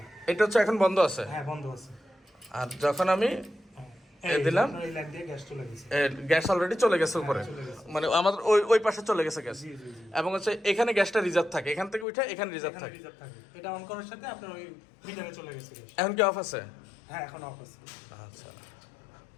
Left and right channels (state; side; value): drops out; right; at 12.1 s